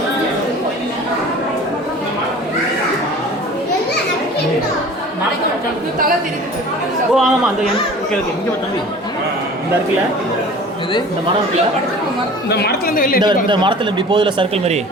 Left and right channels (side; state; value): both; normal; correlation 0.43